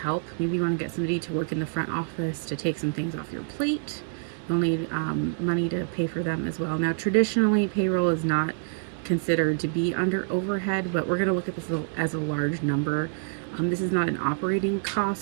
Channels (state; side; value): silent; left; digital silence